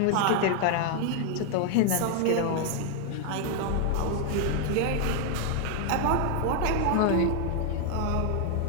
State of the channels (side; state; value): both; different; correlation 0.00